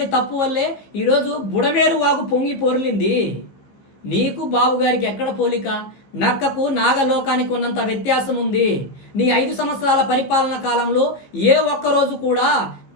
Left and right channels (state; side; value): late; right; 15 ms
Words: తప్పు వల్లే ఈరోజు బుడమేరు వాగు పొంగి పొర్లింది. నీకు బాబు గారికి ఎక్కడ పోలిక? నక్కకు నాగలోకానికి ఉన్నంత వ్యత్యాసం ఉంది. నీ 5 సంవత్సరాల పరిపాలన కాలంలో ఏ ఒక్కరోజు కూడా